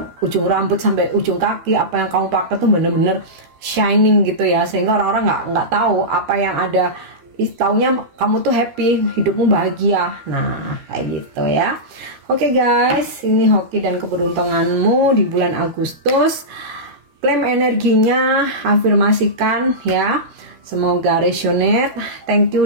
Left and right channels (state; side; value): late; left; 13 ms